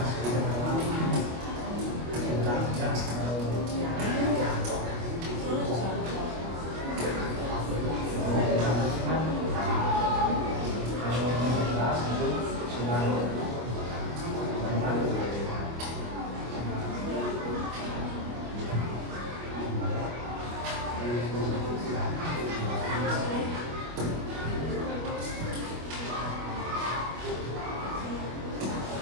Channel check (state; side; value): late; left; 25 ms